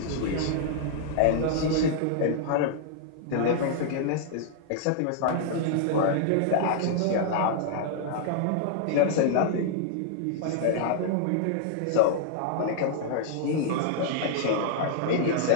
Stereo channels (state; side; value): different; both; correlation -0.01